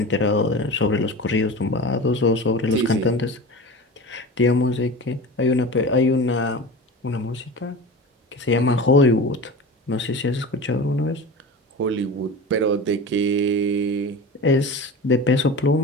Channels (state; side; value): normal; both; correlation 0.32